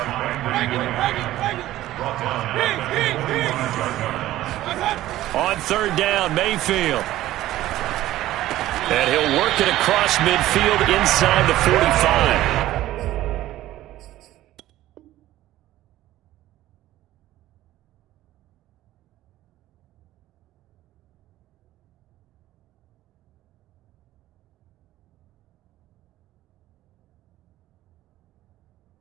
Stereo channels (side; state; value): left; quieter; 14.8 dB